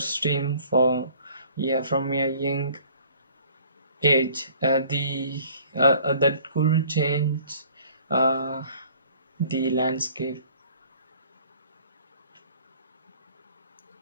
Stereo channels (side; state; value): both; inverted; correlation -0.54